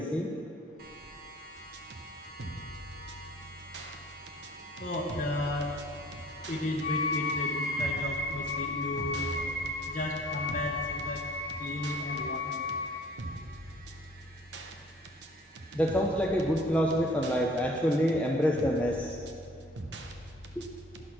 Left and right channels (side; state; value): both; normal; correlation 0.52